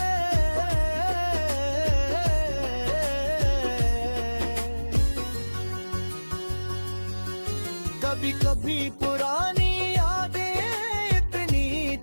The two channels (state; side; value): inverted; both; correlation -1.00